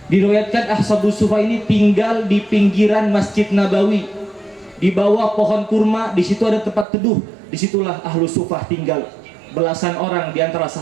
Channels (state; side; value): drops out; left; at 6.9 s